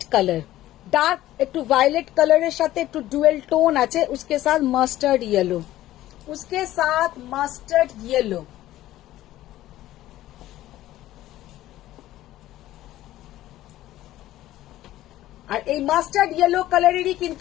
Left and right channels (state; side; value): quieter; right; 14.7 dB